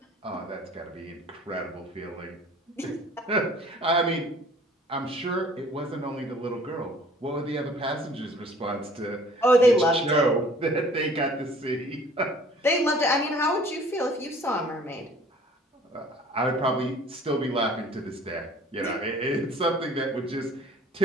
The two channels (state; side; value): normal; both; correlation 0.52